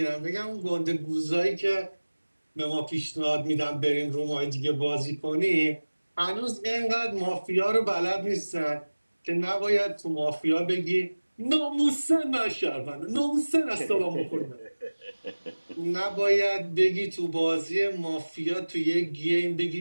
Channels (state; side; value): inverted; both; correlation -1.00